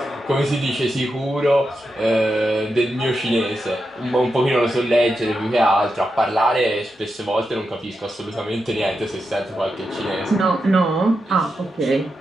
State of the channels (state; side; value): normal; both; correlation 0.87